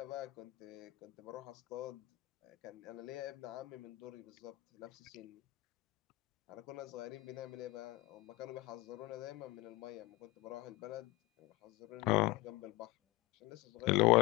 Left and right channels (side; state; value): right; quieter; 20.5 dB